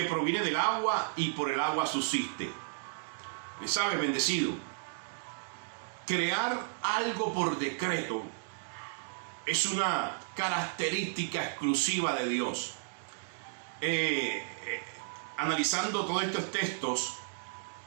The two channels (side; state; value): left; silent; digital silence